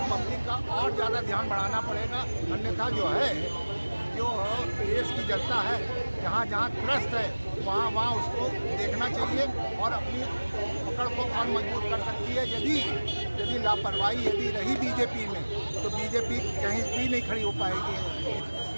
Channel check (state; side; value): inverted; both; correlation -1.00